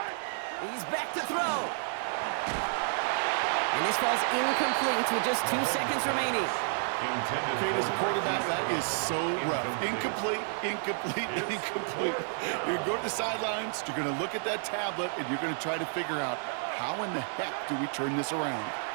He's back to throw. And this falls incomplete with just 2 seconds remaining. Okay, as a quarterback, that is so rough. Incomplete, incomplete, incomplete. You're going to go to the sidelines, you're going to look at that tablet, and you're going to try to figure out how in the heck do we turn this around.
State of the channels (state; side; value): silent; left; 57 dB below the other